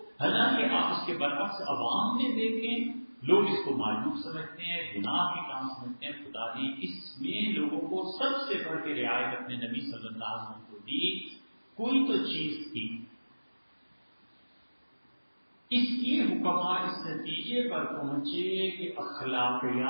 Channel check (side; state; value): both; inverted; correlation -1.00